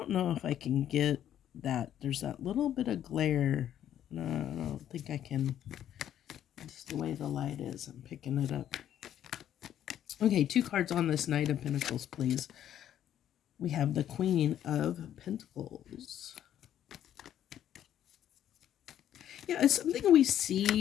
know if I can get that. There's that little bit of glare. No, I don't think I can. It's the way the light is. I'm picking it up. Okay, 2 cards on this Knight of Pentacles, please. We have the Queen of Pentacles. Yeah, it's something we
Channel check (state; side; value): quieter; right; 10.8 dB